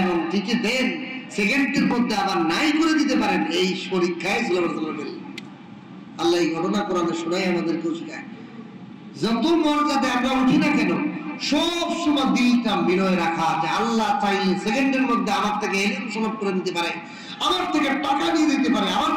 এবং টিকে দেন, সেকেন্ডের মধ্যে আবার নাই করে দিতে পারেন, এই পরীক্ষায় সুলাইমান আলাইহিস সালাম পেলেন। আল্লাহ এই ঘটনা কোরআনে শোনায় আমাদেরকেও শেখায়, যত মর্যাদা আমরা উঠি না কেন, সব সময় দিলটা বিনয় রাখা, যে আল্লাহ চাইলে সেকেন্ডের মধ্যে আমার থেকে এলিম সমাপ্ত করে দিতে পারে, আমার থেকে টাকা নিয়ে দিতে পারে, আমার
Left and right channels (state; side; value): identical; both; correlation 1.00